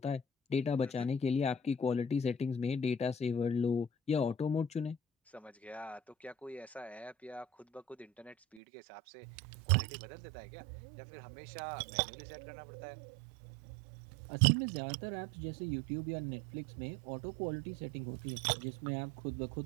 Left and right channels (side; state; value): left; drops out; at 8.6 s